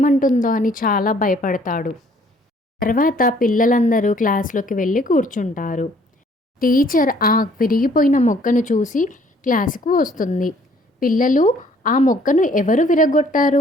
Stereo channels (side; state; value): both; normal; correlation 0.60